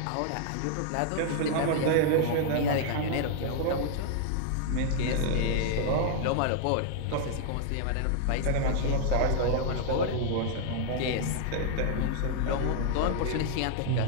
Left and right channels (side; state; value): both; different; correlation -0.01